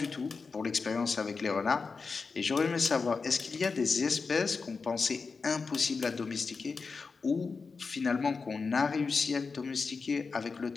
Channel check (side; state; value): right; quieter; 4.7 dB